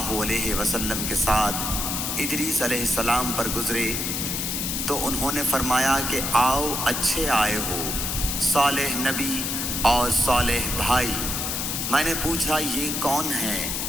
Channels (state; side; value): noise; left; hiss, 1 dB below the sound